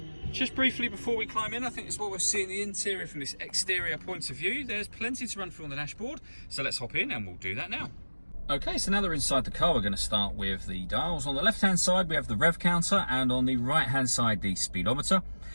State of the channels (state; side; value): inverted; both; correlation -1.00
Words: Just briefly before we climb in, I think it's what we're seeing the interior from this exterior point of view. There's plenty to run through on the dashboard, so let's hop in and we'll do that now. Okay, so now that we're inside the car, we're going to start with the dials. On the left-hand side, we have the rev counter, and on the right-hand side, the speedometer.